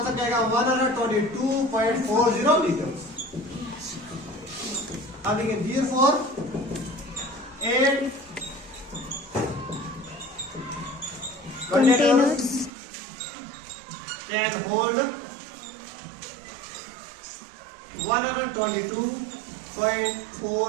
क्या आएगा, 122.40 लीटर। अब देखिए, therefore 8 containers can hold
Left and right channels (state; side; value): drops out; left; at 12.7 s